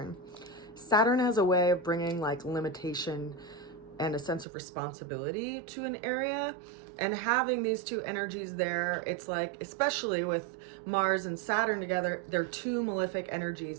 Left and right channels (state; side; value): drops out; left; at 4.5 s